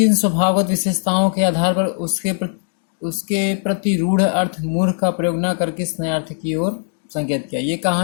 स्वभावगत विशेषताओं के आधार पर उसके प्रति रूढ़ अर्थ मूर्ख का प्रयोग न करके इस नए अर्थ की ओर संकेत किया? ये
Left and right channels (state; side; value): silent; right; digital silence